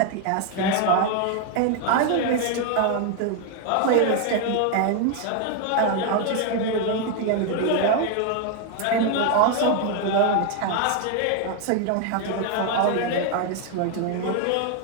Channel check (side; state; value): both; different; correlation 0.01